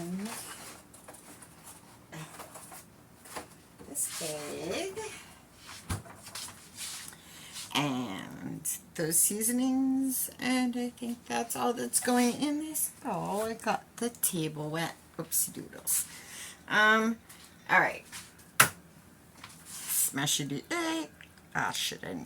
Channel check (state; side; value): identical; both; correlation 1.00